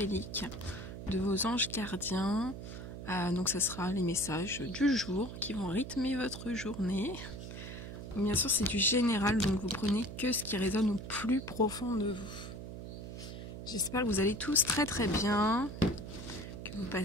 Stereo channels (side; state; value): right; noise; hum, 9 dB below the sound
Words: de vos anges gardiens. Donc ça sera les messages du jour qui vont rythmer votre journée. Bien sûr c'est du général, donc vous prenez que ce qui résonne au plus profond de vous. J'espère que vous allez tous très bien, que vous